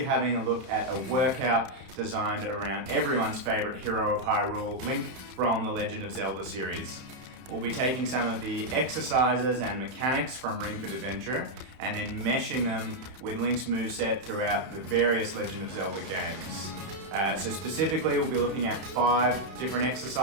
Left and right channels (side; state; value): left; late; 31 ms